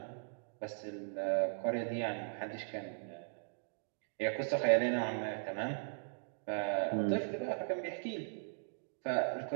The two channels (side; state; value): left; silent; digital silence